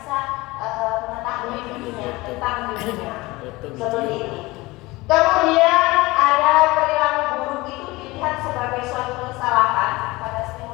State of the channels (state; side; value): quieter; right; 21.3 dB